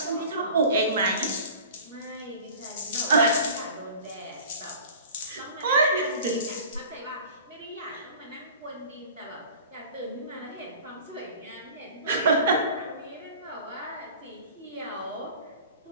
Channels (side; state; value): both; inverted; correlation -0.41